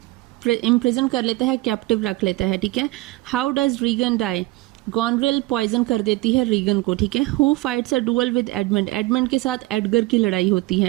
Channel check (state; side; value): quieter; left; 19.6 dB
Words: इम्प्रिजन कर लेता है, कैप्टिव रख लेता है, ठीक है। How does Regan die. Goneril poison कर देती है रीगन को, ठीक है। Who fights a duel with Edmund, Edmund के साथ एडगर की लड़ाई होती